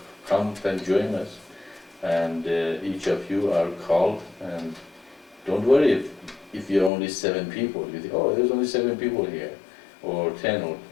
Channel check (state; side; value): drops out; right; at 6.9 s